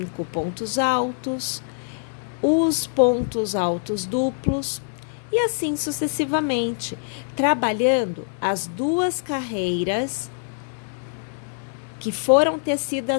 pontos altos, os pontos altos duplos, e assim sucessivamente, trabalhando as duas carreiras que foram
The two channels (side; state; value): right; silent; digital silence